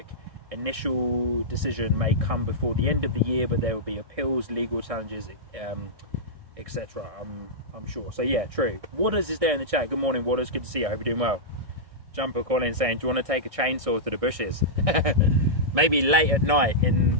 Initial decision may come before the end of the year, but there will be appeals, legal challenges, etc. I'm sure. So yeah, true. Waters is there in the chat. Good morning, Waters. Good to see you. I hope you're doing well. Jumper calling saying, do you want to take a chainsaw to the bushes? Maybe late at night, in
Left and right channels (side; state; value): left; late; 1.6 ms